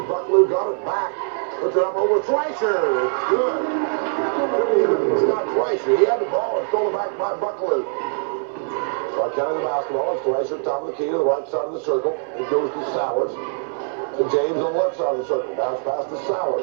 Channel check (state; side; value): silent; left; digital silence